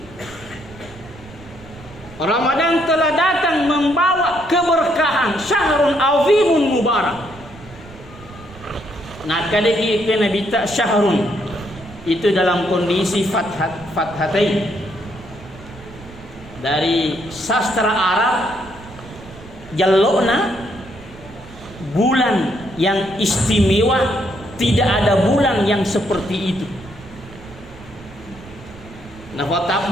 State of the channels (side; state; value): right; noise; rumble, 19 dB below the sound